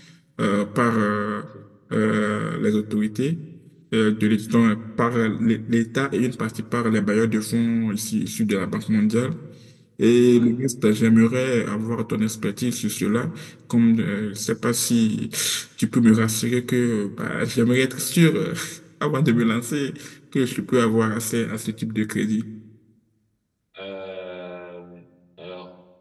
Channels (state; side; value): identical; both; correlation 1.00